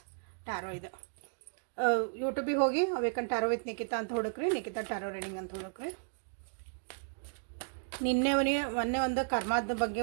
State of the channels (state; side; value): silent; left; digital silence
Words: tarot ಇದು. ಯೂಟ್ಯೂಬಿಗೆ ಹೋಗಿ ವೇಕನ್ ಟ್ಯಾರೋ ವಿತ್ ನಿಕಿತಾ ಅಂತ ಹುಡುಕ್ರಿ, ನಿಕಿತಾ ಟ್ಯಾರೋ ರೀಡಿಂಗ್ ಅಂತ ಹುಡುಕ್ರಿ. ಮೊನ್ನೆ ಒಂದು ಕರ್ಮದ ಬಗ್ಗೆ